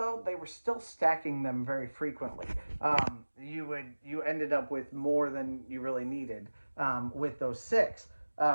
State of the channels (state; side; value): inverted; both; correlation -1.00